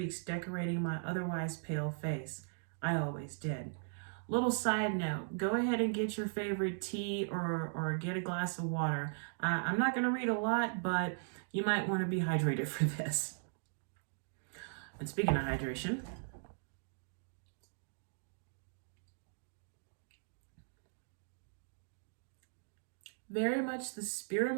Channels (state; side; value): silent; left; digital silence